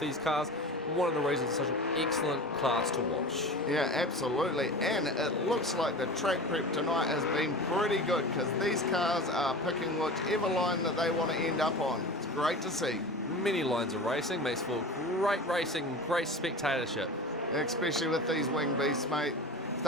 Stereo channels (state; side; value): normal; both; correlation 0.32